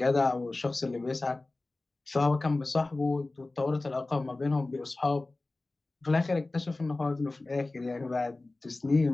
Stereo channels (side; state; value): right; quieter; 3.1 dB